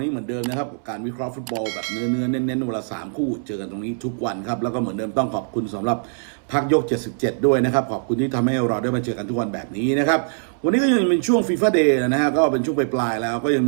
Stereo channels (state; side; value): silent; left; 64 dB below the other